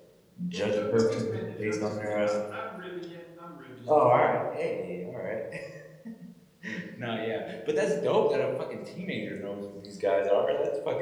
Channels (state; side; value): identical; both; correlation 1.00